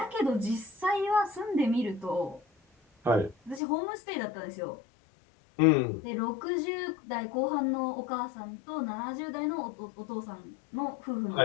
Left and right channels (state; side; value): drops out; right; at 3.6 s